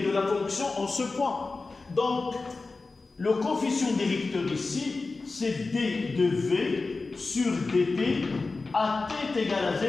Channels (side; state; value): right; quieter; 3.8 dB